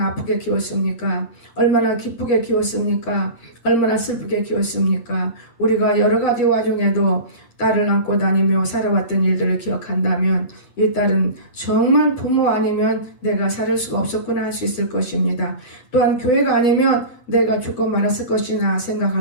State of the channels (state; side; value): late; right; 8.2 ms